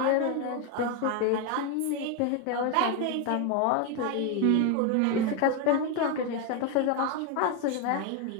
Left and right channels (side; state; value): both; different; correlation 0.01